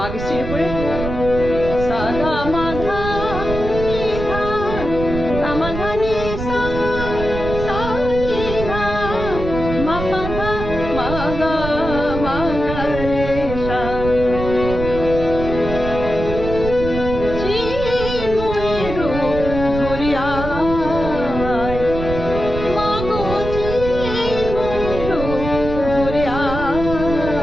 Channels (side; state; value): right; noise; rumble, 6 dB below the sound